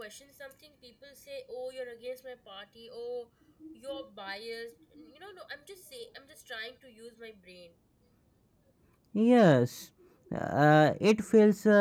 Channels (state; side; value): identical; both; correlation 1.00